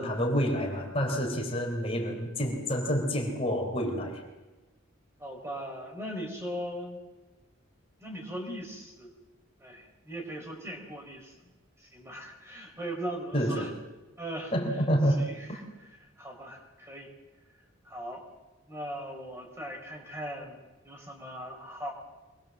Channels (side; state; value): both; normal; correlation 0.64